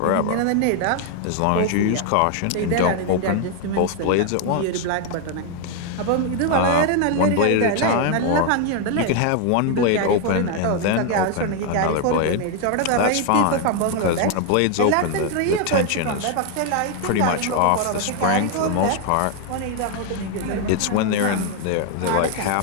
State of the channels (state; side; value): different; both; correlation 0.00